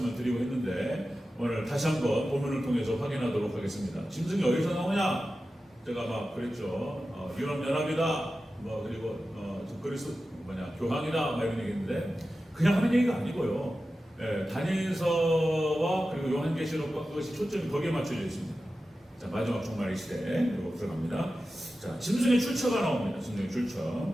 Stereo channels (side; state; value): both; normal; correlation 0.93